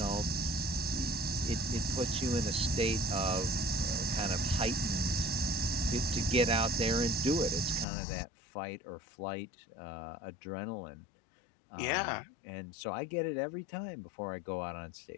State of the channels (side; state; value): right; drops out; at 7.9 s